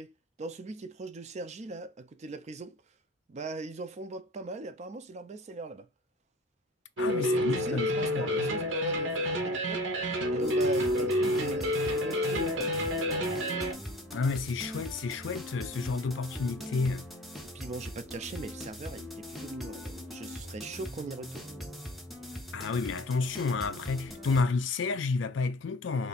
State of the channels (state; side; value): normal; both; correlation 0.43